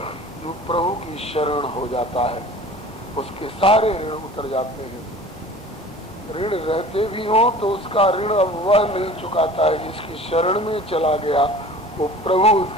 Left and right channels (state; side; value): normal; both; correlation 0.43